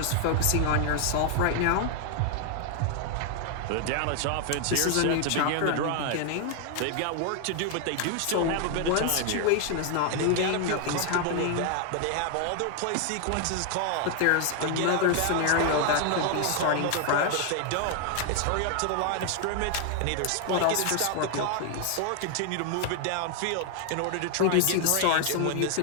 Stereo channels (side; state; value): both; different; correlation 0.00